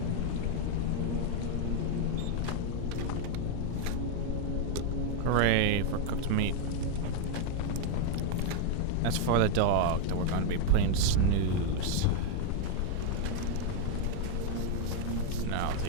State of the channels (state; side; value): different; both; correlation 0.00